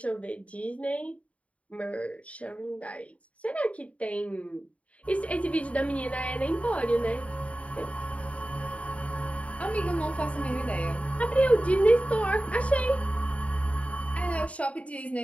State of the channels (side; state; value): right; late; 0.065 ms